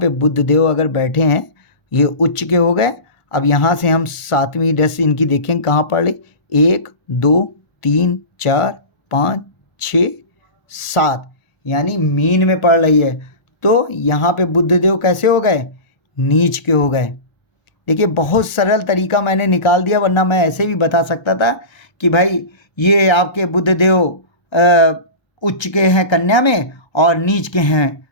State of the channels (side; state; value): right; late; 1.0 ms